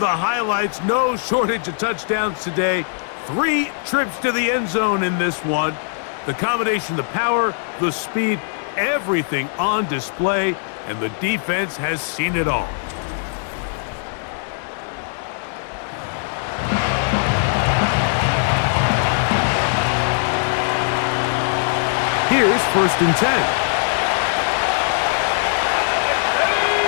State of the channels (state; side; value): silent; right; 65 dB below the other